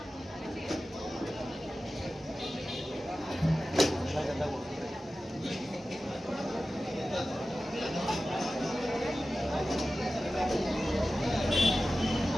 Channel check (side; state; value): both; normal; correlation 0.95